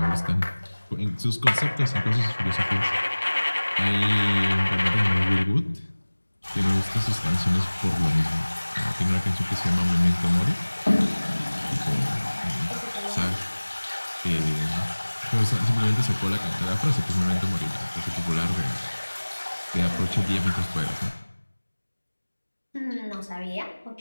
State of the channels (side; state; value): both; inverted; correlation -1.00